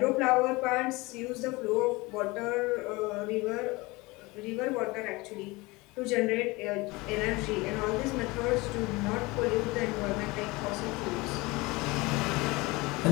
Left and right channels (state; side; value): quieter; right; 23.3 dB